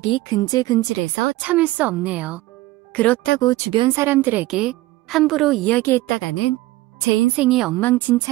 근질근질해서 참을 수 없네요. 그렇다고 주변 사람들에게 함부로 이야기했다가는 제 인생이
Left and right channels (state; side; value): quieter; left; 18.2 dB